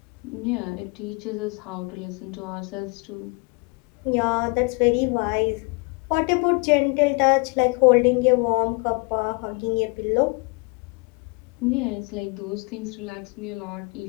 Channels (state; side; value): quieter; right; 31.7 dB